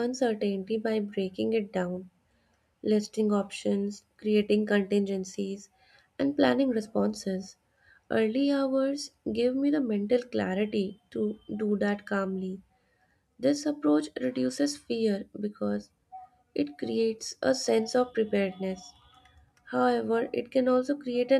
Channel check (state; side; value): identical; both; correlation 1.00